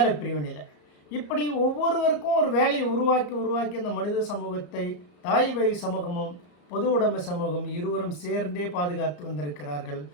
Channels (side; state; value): right; late; 34 ms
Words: பிரிவினையில். இப்படி ஒவ்வொருவருக்கும் ஒரு வேலையை உருவாக்கி அந்த மனித சமூகத்தை தாய் வழி சமூகமும் பொது உடைமை சமூகம் இருவரும் சேர்ந்தே பாதுகாத்து வந்திருக்கிறார்கள்.